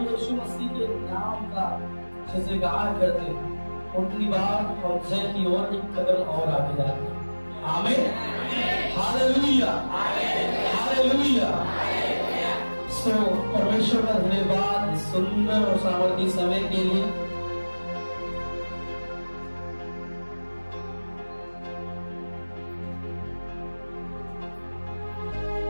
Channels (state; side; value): inverted; both; correlation -1.00